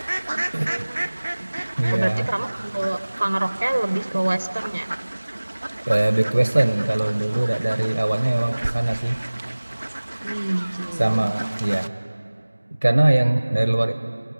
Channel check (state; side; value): inverted; both; correlation -1.00